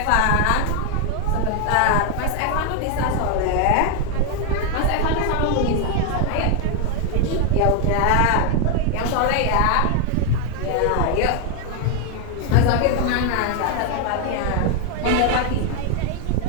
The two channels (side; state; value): both; different; correlation 0.01